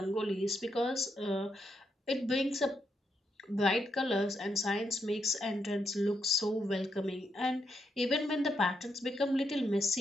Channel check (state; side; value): normal; both; correlation 0.79